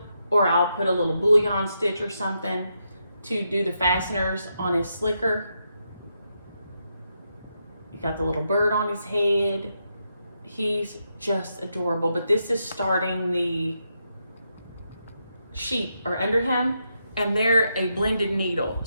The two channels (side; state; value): both; inverted; correlation -0.82